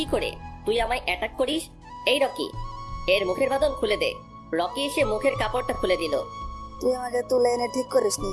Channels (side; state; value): both; identical; correlation 1.00